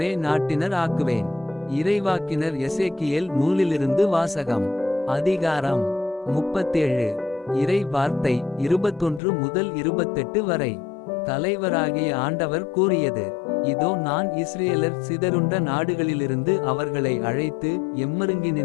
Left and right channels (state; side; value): drops out; right; at 9.2 s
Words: நாட்டினர் ஆக்குவேன். இறைவாக்கினர் எசேக்கியேல் நூலிலிருந்து வாசகம். அதிகாரம் 37. இறை வார்த்தை 21 முதல் 28 வரை. தலைவராகிய ஆண்டவர் கூறியது: இதோ, நான் இஸ்ரேலர் சிதறுண்ட நாடுகளிலிருந்து அவர்களை அழைத்து